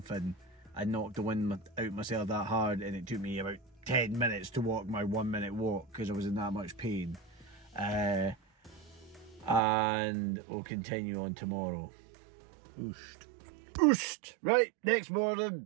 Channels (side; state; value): left; drops out; at 9.6 s